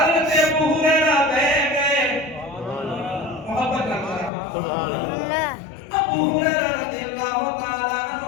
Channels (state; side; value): drops out; right; at 4.3 s